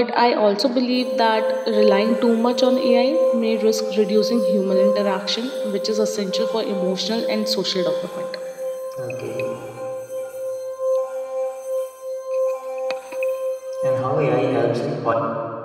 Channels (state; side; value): identical; both; correlation 1.00